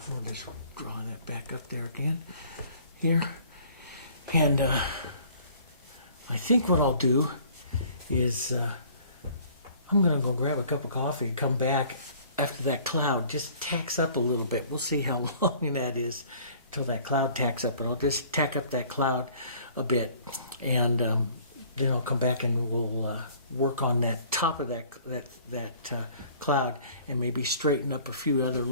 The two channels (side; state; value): both; inverted; correlation -0.53